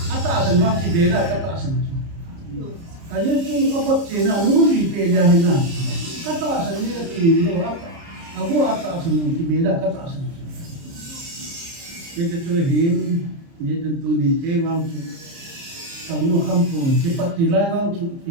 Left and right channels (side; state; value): left; late; 30 ms